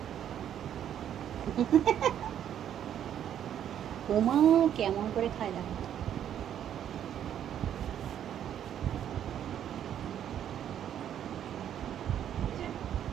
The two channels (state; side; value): quieter; left; 10.0 dB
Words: ওমা কেমন করে খায় দেখো।